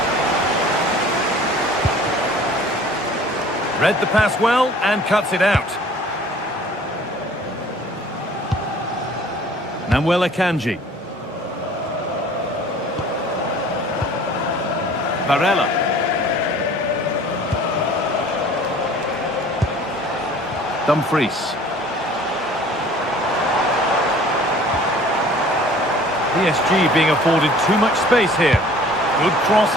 Read the pass well and cuts it out. Namuel Akanji. Varela. Dumfries. PSG being afforded too much space here. Good cross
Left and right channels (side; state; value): both; normal; correlation 0.50